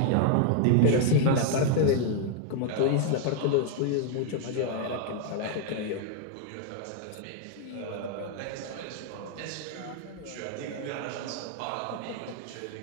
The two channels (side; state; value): both; different; correlation 0.00